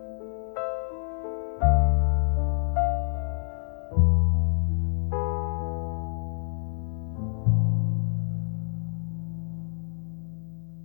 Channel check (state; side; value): silent; right; 60 dB below the other